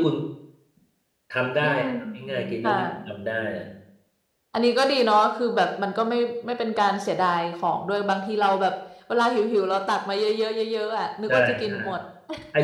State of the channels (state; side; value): identical; both; correlation 1.00